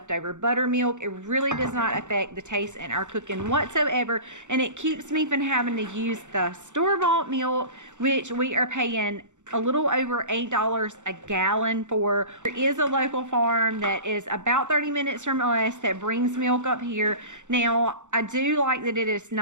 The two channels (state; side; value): late; left; 0.85 ms